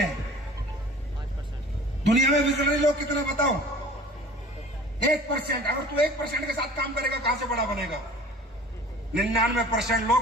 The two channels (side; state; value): both; normal; correlation 0.46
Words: हैं? दुनिया में विजनरी लोग कितने बताओ? 1%। अगर तू 1% के साथ काम करेगा, कहां से बड़ा बनेगा? 99%